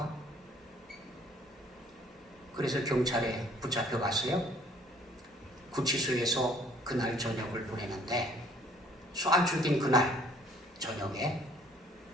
그래서 경찰에 붙잡혀 갔어요. 구치소에서 그날 저녁을 보내는데 쏴 죽인 그날 저녁에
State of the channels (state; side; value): normal; both; correlation 0.58